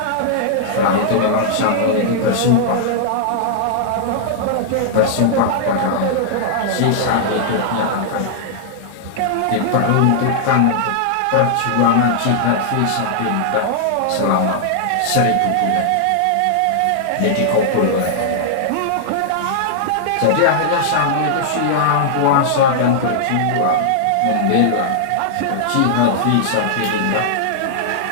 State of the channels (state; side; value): different; both; correlation -0.01